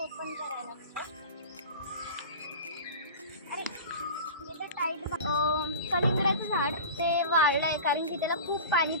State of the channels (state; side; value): inverted; both; correlation -0.33